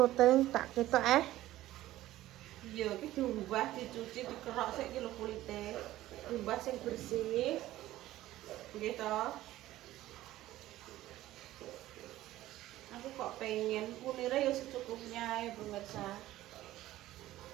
tak ketok Iya, iki diumbah, dicuci, dikerok sik iki lho kulite. Diumbah sing bersih. Nggih to. Aku kok pengen kunire ya secukupnya ya pemirsa.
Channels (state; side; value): quieter; left; 15.2 dB